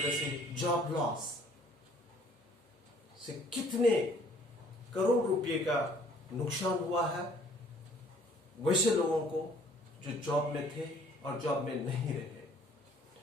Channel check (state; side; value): normal; both; correlation 0.58